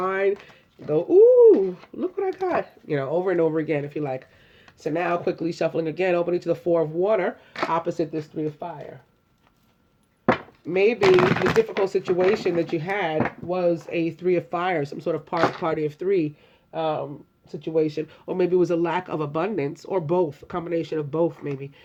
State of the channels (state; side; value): identical; both; correlation 1.00